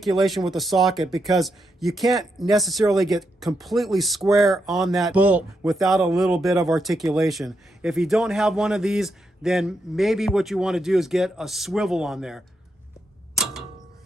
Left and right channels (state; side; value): normal; both; correlation 0.82